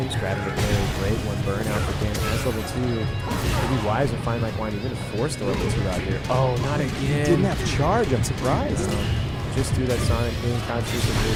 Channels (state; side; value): identical; both; correlation 1.00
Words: grabbing the very great one burnout for Danny. That's level 2. It'd be wise to find like Wine even to force the level 2 out here. Oh, not again. Didn't have charge. I'm surprised. Just do that Sonic boom. Crouch Fierce is a